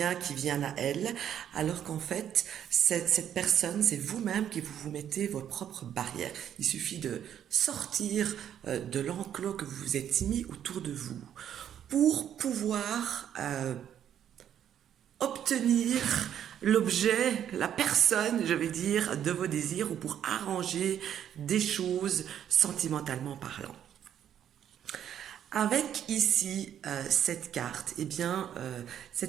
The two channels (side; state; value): left; quieter; 9.8 dB